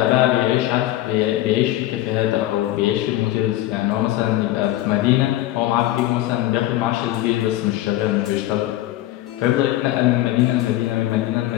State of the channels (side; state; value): right; quieter; 15.0 dB